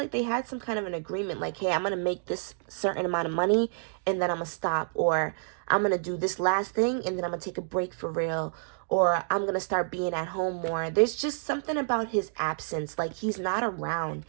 they had some kind of an agreement. Like, hey, I'm gonna make this certain amount of money and then I'm gonna stop, or I'm gonna do this last thing and then I'm gonna take a break for real, or I'm gonna start being at home more. There's just something about his absence. Like, he's not around.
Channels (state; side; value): silent; left; digital silence